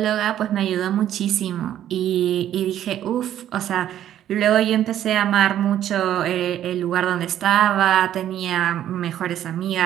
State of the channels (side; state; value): left; quieter; 11.4 dB